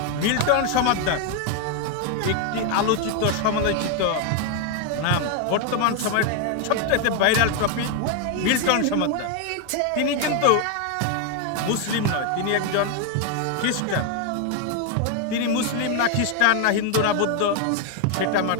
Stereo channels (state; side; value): different; both; correlation 0.01